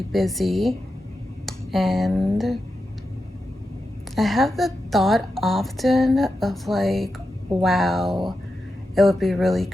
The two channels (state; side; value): normal; both; correlation 0.89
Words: busy, and I have the thought often of like, wow, it would be really